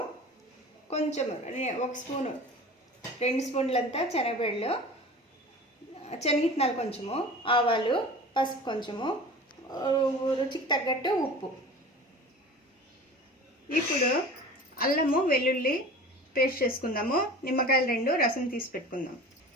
కొంచెం 1 స్పూను 2 స్పూన్లంతా శనగబెళ్ళు, శనగిత్తనాలు కొంచెము, ఆవాలు, పసుపు కొంచెము, రుచికి తగ్గట్టు ఉప్పు. ఇప్పుడు అల్లము వెల్లుల్లి పేస్ట్ చేసుకుందాము. నిమ్మకాయలు 2 రసం తీసి పెట్టుకుందాం.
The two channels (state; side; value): normal; both; correlation 0.38